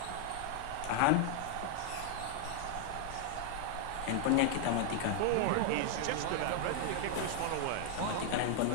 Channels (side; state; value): both; different; correlation 0.00